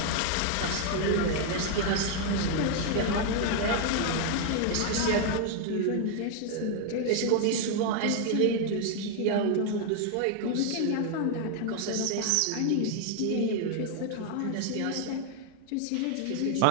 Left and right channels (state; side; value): different; both; correlation 0.00